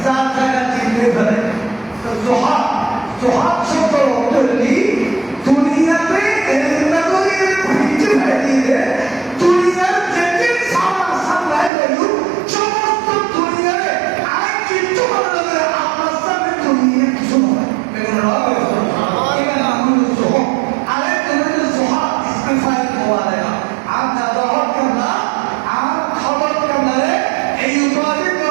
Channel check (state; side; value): drops out; left; at 11.7 s